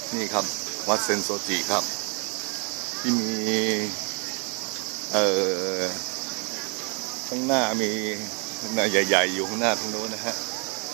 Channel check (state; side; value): quieter; left; 36.4 dB